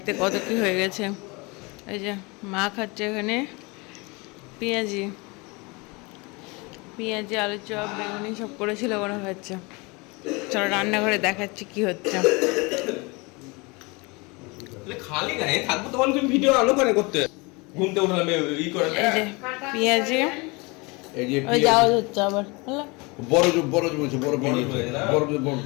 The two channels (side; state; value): right; quieter; 27.0 dB